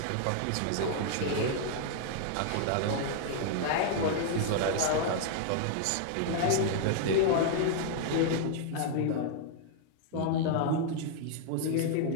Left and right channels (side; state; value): both; different; correlation -0.01